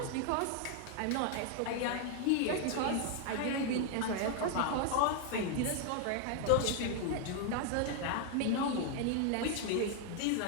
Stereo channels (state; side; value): different; both; correlation 0.00